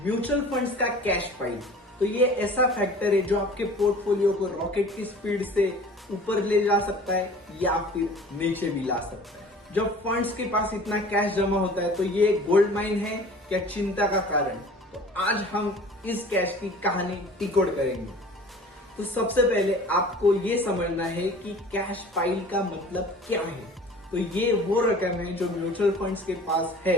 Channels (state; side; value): normal; both; correlation 0.45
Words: म्यूचुअल फंड्स का कैश पाइल, तो ये ऐसा फैक्टर है जो आपके पोर्टफोलियो को रॉकेट की स्पीड से ऊपर ले जा सकता है या फिर नीचे भी ला सकता है। जब फंड्स के पास इतना कैश जमा होता है तो ये गोल्ड माइन है क्या चिंता का कारण? तो आज हम इस कैश की कहानी डिकोड करेंगे। तो सबसे पहले आपको ये समझना है कि कैश पाइल का मतलब क्या है। तो ये वो रकम है जो म्यूचुअल फंड्स के पास